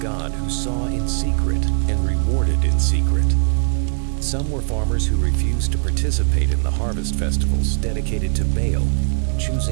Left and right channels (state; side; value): silent; left; digital silence